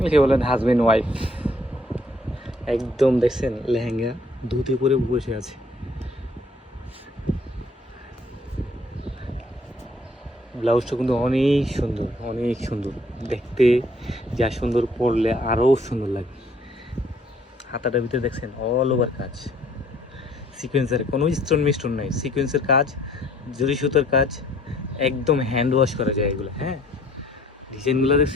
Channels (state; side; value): normal; both; correlation 0.61